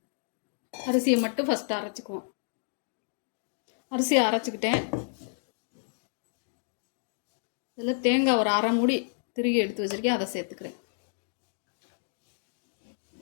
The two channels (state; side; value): silent; right; digital silence